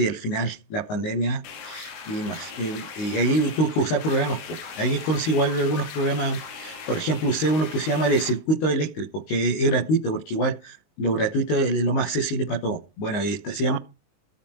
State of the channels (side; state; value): right; late; 19 ms